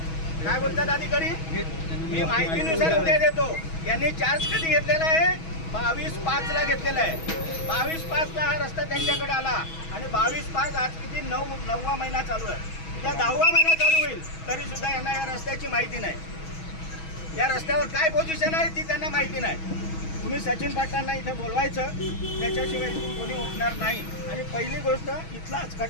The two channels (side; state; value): right; late; 6.2 ms